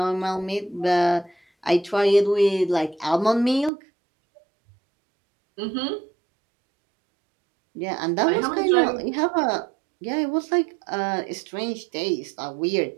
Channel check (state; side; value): drops out; left; at 3.7 s